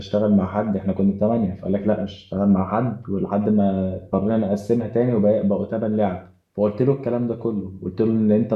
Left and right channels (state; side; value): identical; both; correlation 1.00